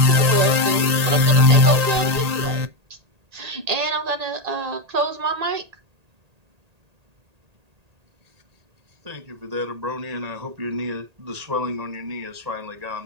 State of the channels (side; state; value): left; late; 1.8 ms